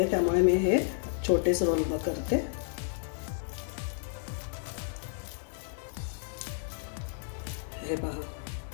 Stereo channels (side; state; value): right; silent; digital silence